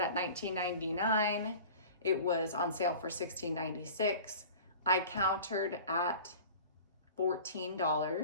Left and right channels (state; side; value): inverted; both; correlation -0.41